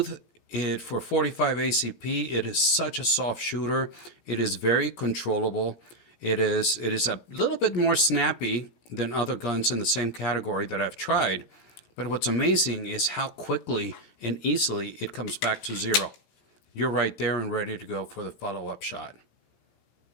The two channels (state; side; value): late; right; 17 ms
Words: It for 45 ACP, it is such a soft shooter. It is very controllable. It is a little bit more snappy than other guns in the same category that I've tried. But what's amazing is how quickly and easily it comes back to zero. You're right there and ready to go for the follow-up shot.